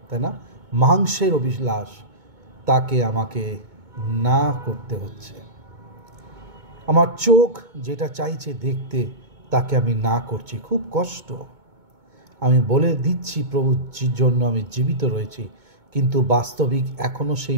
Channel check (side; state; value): left; late; 2.2 ms